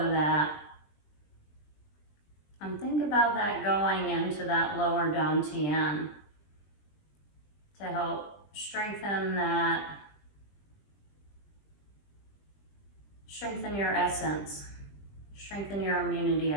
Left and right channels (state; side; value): late; right; 20 ms